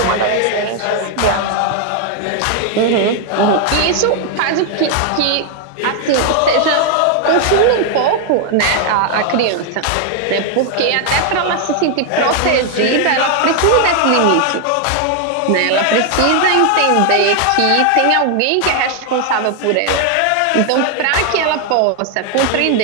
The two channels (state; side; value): different; both; correlation 0.00